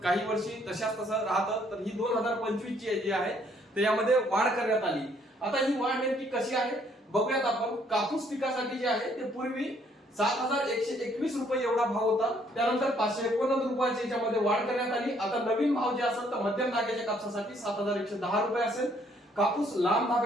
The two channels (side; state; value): both; normal; correlation 0.66